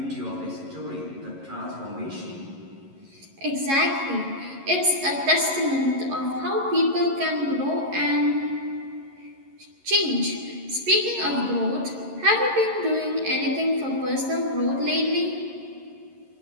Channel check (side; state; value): left; late; 11 ms